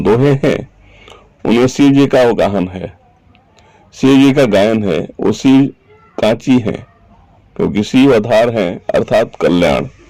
हैं उनमें शिव जी का अवगाहन है, शिव जी का गायन है। वो शिव कांची है क्योंकि शिव आधार है अर्थात कल्याण।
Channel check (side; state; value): both; identical; correlation 1.00